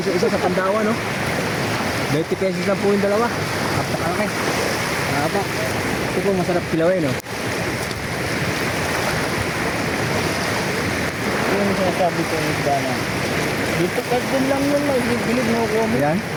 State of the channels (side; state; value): both; identical; correlation 1.00